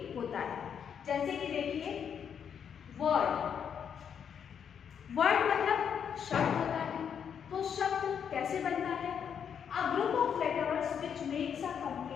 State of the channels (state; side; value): quieter; right; 7.8 dB